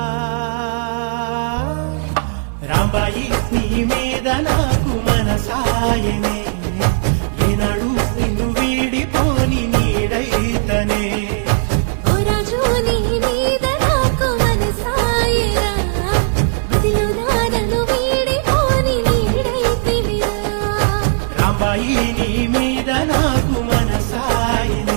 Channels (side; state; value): left; silent; digital silence